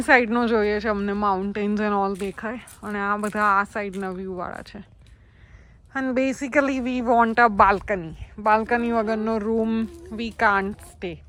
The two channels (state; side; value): identical; both; correlation 1.00